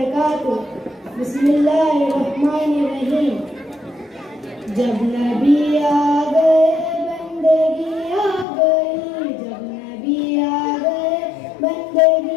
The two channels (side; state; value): right; drops out; at 8.5 s